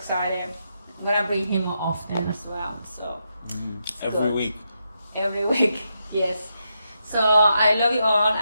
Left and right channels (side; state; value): both; inverted; correlation -0.83